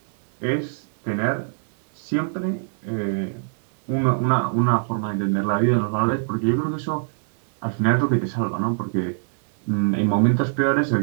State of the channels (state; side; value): silent; left; digital silence